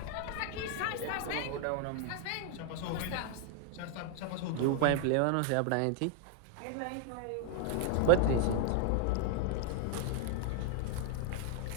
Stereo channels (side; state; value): both; different; correlation 0.00